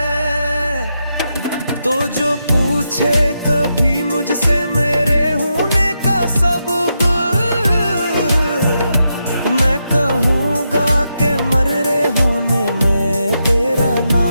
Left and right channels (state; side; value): inverted; both; correlation -0.84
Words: तो जो पूछे कभी मुझसे मेरे होने का सबब, मैं कहूँगा कि मरे होने में तेरा